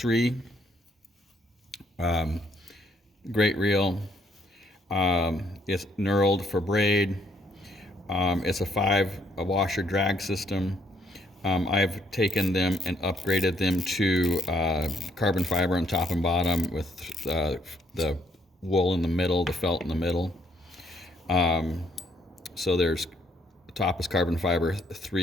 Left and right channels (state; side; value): normal; both; correlation 0.69